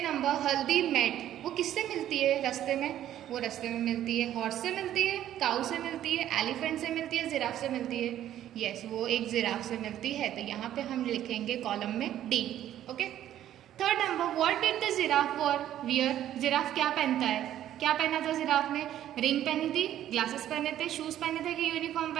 नंबर, हल्दी मेट, वो किससे मिलती है रास्ते में, वो रास्ते में मिलती है। हॉर्स से मिलती है, काऊ से मिलती है, एलिफेंट से मिलती है, जिराफ से मिलती है। यस, वो एक जिराफ से मिलती है। तो यहाँ पे हम लिखेंगे कॉलम में D. Okay, third number, what did the giraffe wear? Giraffe क्या पहनता है? क्या पहना था जिराफ ने? रिंग पहनी थी, ग्लासेस पहने थे, शूज पहने थे कि यूनिफॉर्म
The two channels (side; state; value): left; quieter; 11.8 dB